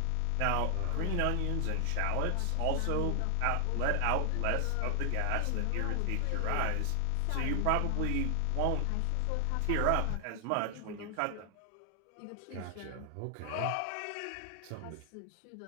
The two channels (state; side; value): different; both; correlation 0.00